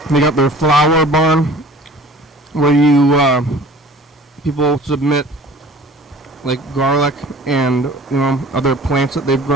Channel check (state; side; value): normal; both; correlation 0.46